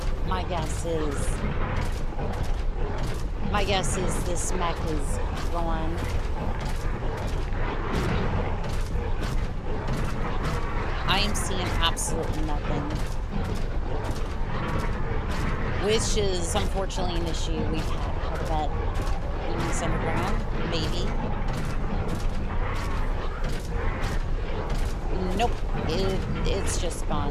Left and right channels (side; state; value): both; identical; correlation 1.00